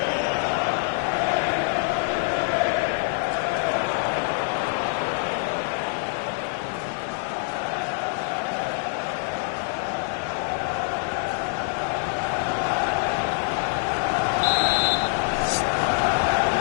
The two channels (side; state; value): right; silent; 62 dB below the other